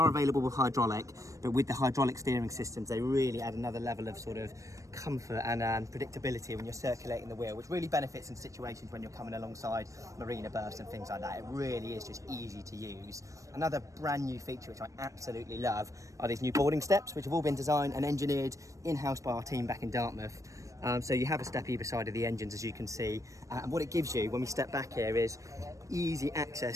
available with hydraulic, but with the hydraulic steering systems they really add another level of sort of comfort and predictability when you're circulating the wheel, which really benefits in situations when you're coming alongside marina berths and things like that. It really is just easy to use. Another brand new feature which I absolutely love are these new boarding steps, which have all been designed and engineered in-house by our team back in Dartmouth. So you have a step either side of the engines, as you can see, and what it gives you when we step back here is easy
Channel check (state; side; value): late; left; 0.16 ms